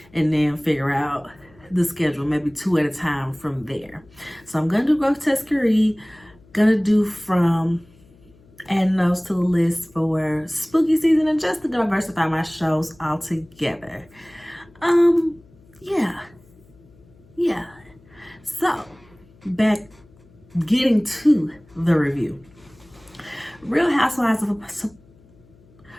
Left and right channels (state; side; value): noise; left; hum, 28 dB below the sound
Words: and then figure out the schedule, maybe 2 at a time from there. So I'm gonna do Grotesquerie, gonna do From, adding those to the list for spooky season, and just to diversify my shows altogether. Yeah. So getting to the review. Real Housewives